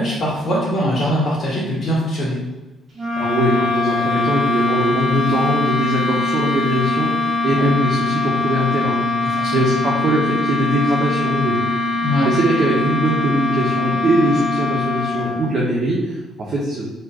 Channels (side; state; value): both; normal; correlation 0.67